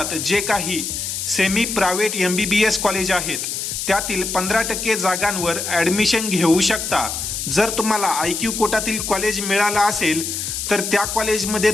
जे काही सेमी प्रायव्हेट MBBS कॉलेज आहेत त्यातील 15% जागांवर ॲडमिशन घेऊ शकता। जर तुम्हाला IQ कोटातील कॉलेज मिळाला असेल तर त्या कॉलेजमध्ये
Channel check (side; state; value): left; noise; hiss, 4 dB below the sound